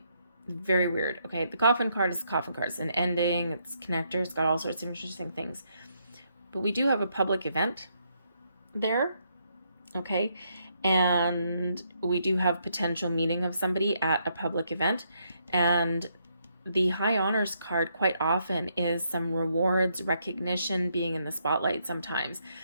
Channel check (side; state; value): both; inverted; correlation -0.75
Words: Very weird. Okay, the coffin card is the coffin card. It's an ending, it's connector, it's got all sorts of interesting things. But we do have a public event there, okay? And we do have potential meeting of somebody at a public event. And the high honors card quite often is some rewards, recognition, being in the spotlight sometimes,